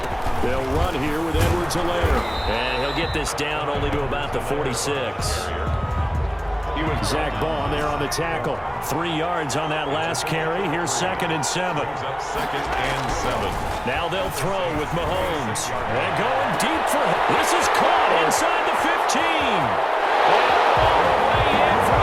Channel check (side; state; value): both; identical; correlation 1.00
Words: They'll run here with Edwards-Helaire. And he'll get this down only to about the 46. Zach Bond there on the tackle. 3 yards on that last carry. Here's 2nd and 7. 2nd and 7. Now they'll throw with Mahomes. And going deep for him. This is caught inside the 15. And all the way in for